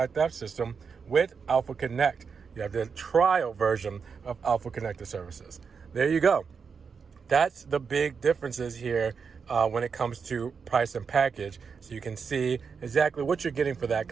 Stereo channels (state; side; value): quieter; left; 5.8 dB